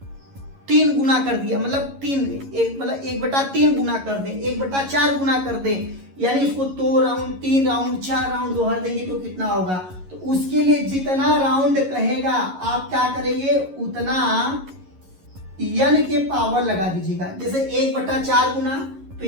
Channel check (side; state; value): left; late; 11 ms